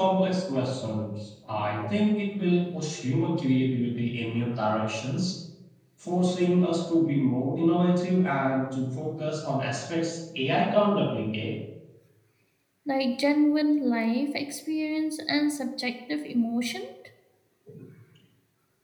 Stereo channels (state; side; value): identical; both; correlation 1.00